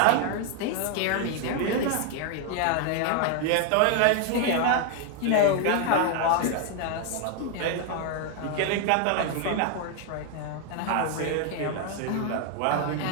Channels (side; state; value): both; different; correlation 0.00